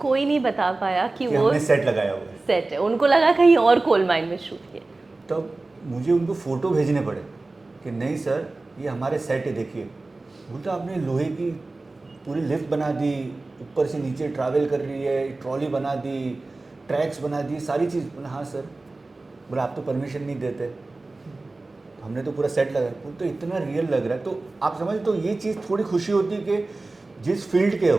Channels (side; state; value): left; quieter; 3.2 dB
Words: नहीं बता पाया कि वो हमने सेट लगाया हुआ है. सेट है, उनको लगा कहीं और कोल माइन में शूट किया. तब मुझे उनको फ़ोटो भेजने पड़े कि नहीं सर ये हमारे सेट है, देखिए. बोलता आपने लोहे की पूरी लिफ्ट बना दी, ऊपर से नीचे ट्रैवल कर रही है, ट्रॉली बना दी, ट्रैक्स बना दी, सारी चीज़. बोला हाँ सर. बोला आप तो परमिशन नहीं देते, हमने तो पूरा सेट लगाया. वो तो इतना रियल लग रहा है. तो आप समझ, तो ये चीज़ थोड़ी खुशी होती है कि जिस फील्ड के